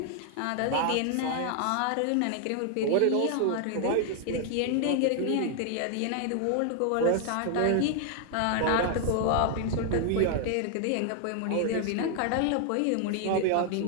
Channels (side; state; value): both; different; correlation 0.00